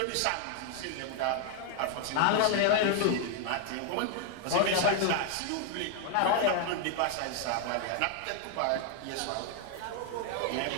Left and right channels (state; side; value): different; both; correlation 0.00